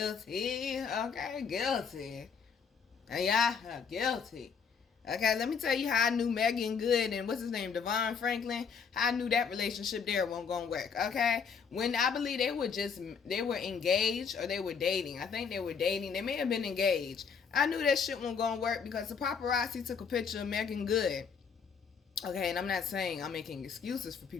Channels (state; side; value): quieter; right; 6.3 dB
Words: guilty. Yeah, guilty. Okay, let me tell you how I knew Megan Good and what's his name, Devon Franklin, how I knew that relationship there wasn't gonna work. Okay, when I believe they were engaged or they were dating. I think they were dating. They may have been engaged. I knew that shit wasn't gonna work because the paparazzi took a picture of Megan Good. Okay, and I'm not saying I'm making excuses for